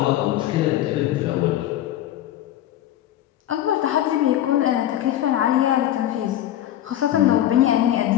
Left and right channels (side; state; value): right; quieter; 12.5 dB